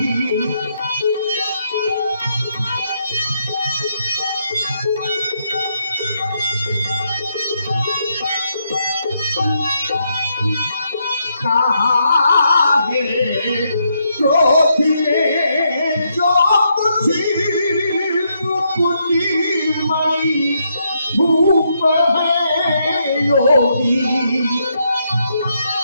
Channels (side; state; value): both; inverted; correlation -0.78